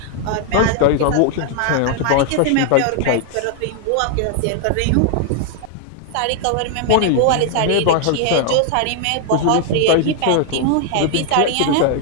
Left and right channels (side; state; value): both; different; correlation 0.00